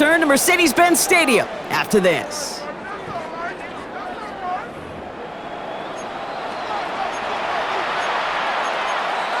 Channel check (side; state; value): both; identical; correlation 1.00